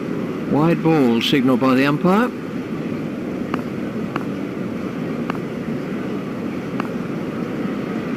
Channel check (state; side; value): identical; both; correlation 1.00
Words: Wide ball signalled by the umpire.